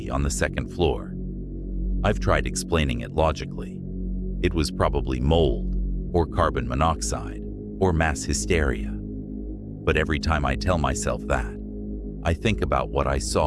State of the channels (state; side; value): identical; both; correlation 1.00